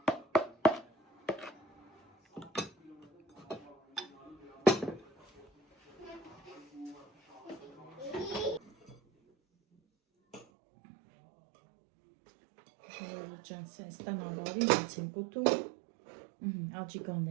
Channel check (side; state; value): left; drops out; at 10.5 s